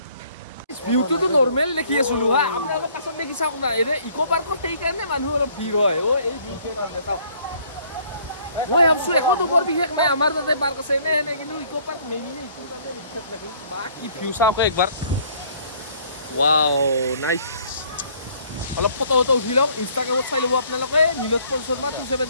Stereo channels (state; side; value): inverted; both; correlation -0.60